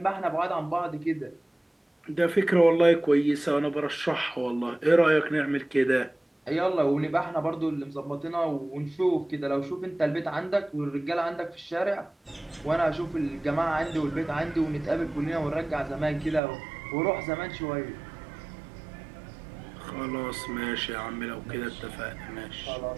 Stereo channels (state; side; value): drops out; left; at 16.4 s